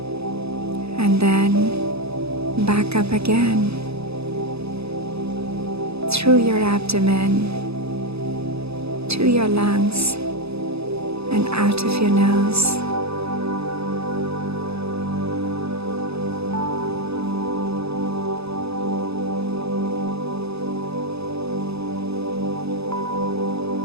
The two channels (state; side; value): late; left; 0.79 ms